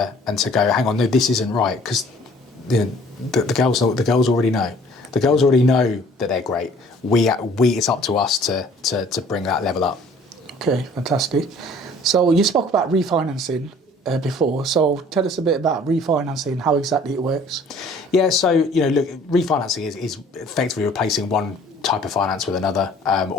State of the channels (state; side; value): normal; both; correlation 0.53